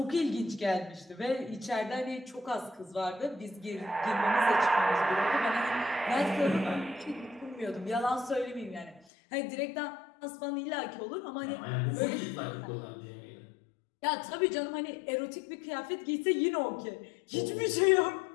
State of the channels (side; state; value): right; drops out; at 9.1 s